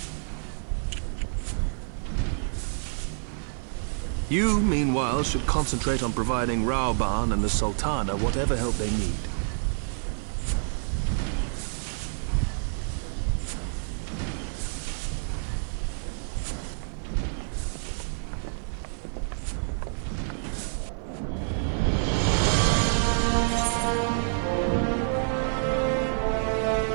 You, meanwhile, should concentrate on providing Raoban and the Sultana whatever help they need.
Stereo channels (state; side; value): silent; left; digital silence